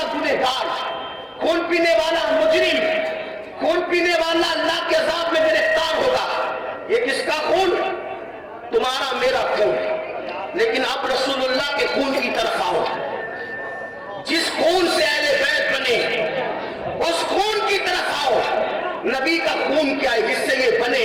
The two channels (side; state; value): both; identical; correlation 1.00